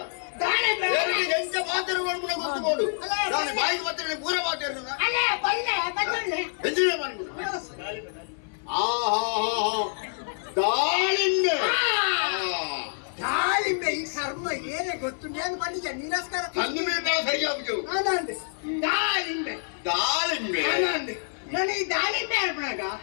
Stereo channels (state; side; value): silent; right; 57 dB below the other